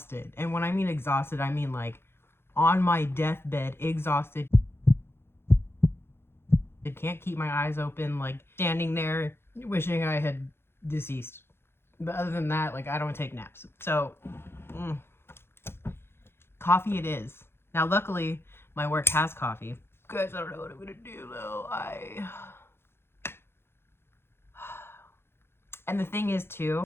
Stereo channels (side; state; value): right; late; 0.11 ms